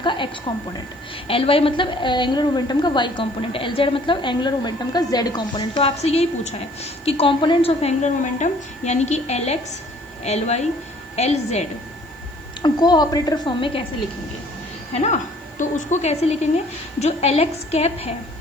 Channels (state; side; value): noise; right; hiss, 29 dB below the sound